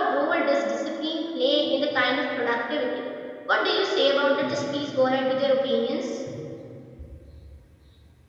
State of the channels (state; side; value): identical; both; correlation 1.00